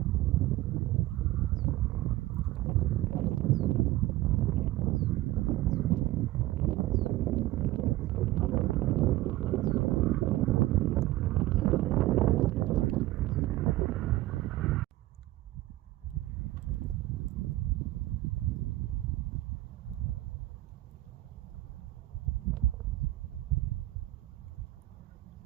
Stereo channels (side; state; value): left; quieter; 17.0 dB